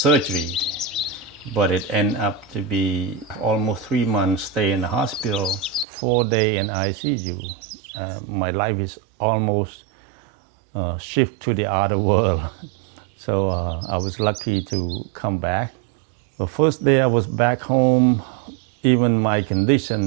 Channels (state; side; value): drops out; left; at 5.9 s